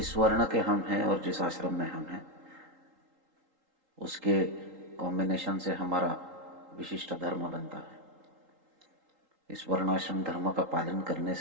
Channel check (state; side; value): late; left; 3.8 ms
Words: वर्ण के हम हैं और जिस आश्रम में हम हैं, उसके कॉम्बिनेशन से हमारा विशिष्ट धर्म बनता है। इस वर्णाश्रम धर्म का पालन करने